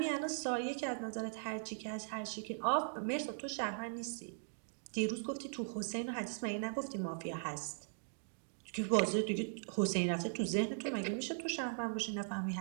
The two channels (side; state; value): left; silent; digital silence